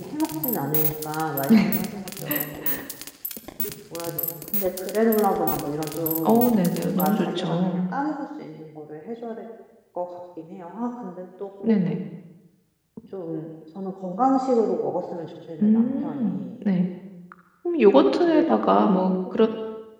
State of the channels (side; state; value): both; identical; correlation 1.00